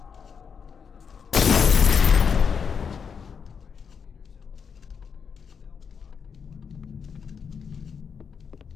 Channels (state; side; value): quieter; right; 6.4 dB